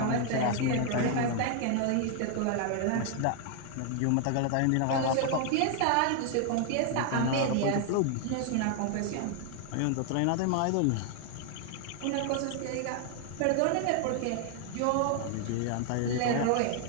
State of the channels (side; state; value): both; different; correlation 0.00